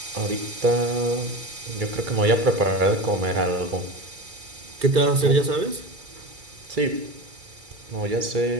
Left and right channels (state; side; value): late; left; 2.3 ms